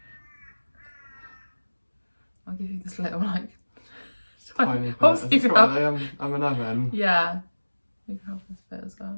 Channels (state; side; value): inverted; both; correlation -1.00